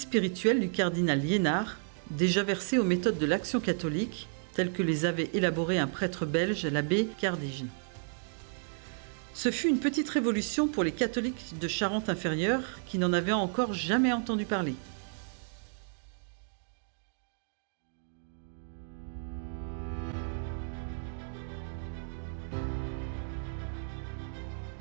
spirituel du cardinal Liénard, déjà versé aux méthodes de l'Action catholique, telles que les avait élaborées un prêtre belge, l'abbé Cardigne. Ce fut une petite révolution pour les catholiques de Charente-Inférieure qui n'en avaient encore jamais entendu parler.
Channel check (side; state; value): left; silent; digital silence